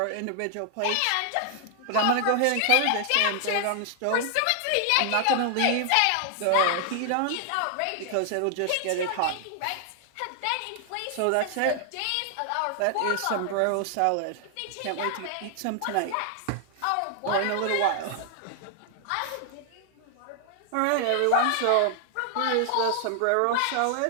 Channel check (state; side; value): different; both; correlation 0.00